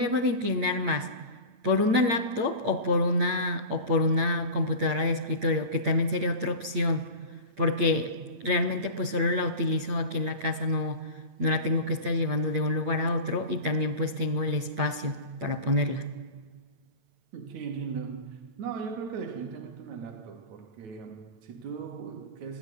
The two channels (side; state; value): left; late; 8.9 ms